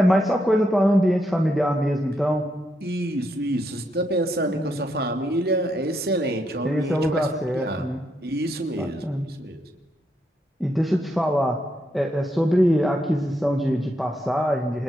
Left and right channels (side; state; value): both; normal; correlation 0.79